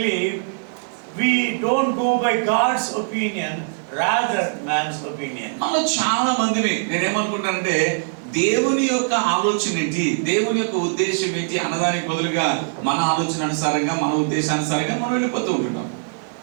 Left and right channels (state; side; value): silent; left; 64 dB below the other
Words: we don't go by God's opinion, rather man's opinion. మనలో చాలా మందిని నేనేమనుకుంటానంటే దేవుని యొక్క ఆలోచన ఏంటి, దేవుని యొక్క ఉద్దేశం ఏంటి అన్నదానికి బదులుగా మన ఆలోచన అనుసారంగా, మన ఉద్దేశానుసారంగా మనం వెళ్ళిపోతూ ఉంటున్నాం.